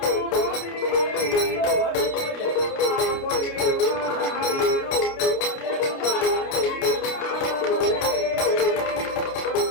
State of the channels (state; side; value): late; right; 29 ms